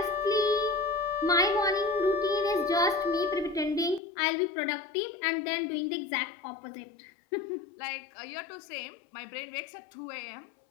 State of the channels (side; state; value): right; drops out; at 4.0 s